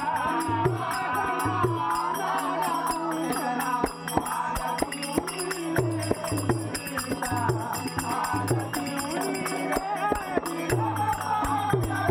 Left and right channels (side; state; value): both; identical; correlation 1.00